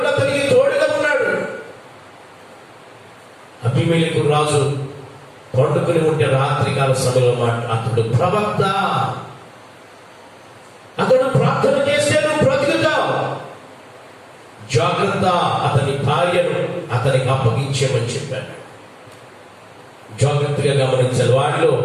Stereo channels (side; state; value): both; identical; correlation 1.00